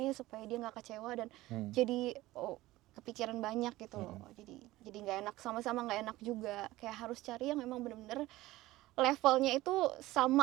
supaya dia nggak kecewa, dan jadi kepikiran banyak gitu loh. Jadi nggak enak, sama-sama nggak enak juga, kayak harus cari yang memang bener-bener levelnya itu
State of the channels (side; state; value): left; quieter; 17.6 dB